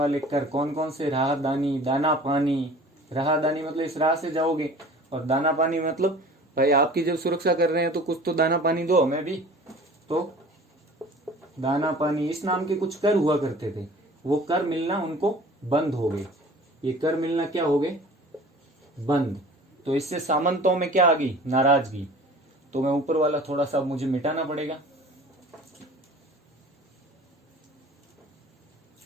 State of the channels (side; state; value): both; normal; correlation 0.44